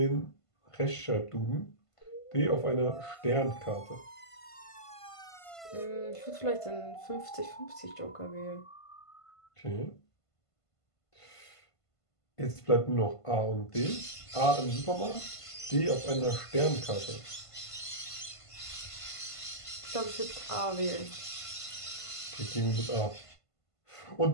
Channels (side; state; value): right; late; 1.5 ms